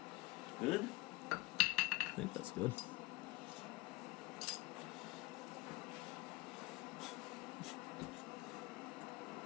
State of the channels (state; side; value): quieter; right; 21.8 dB